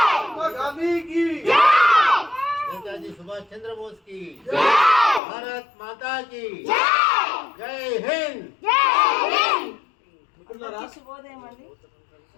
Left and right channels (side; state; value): right; drops out; at 5.2 s